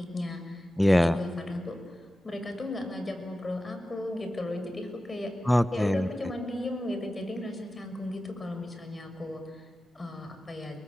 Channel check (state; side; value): normal; both; correlation 0.94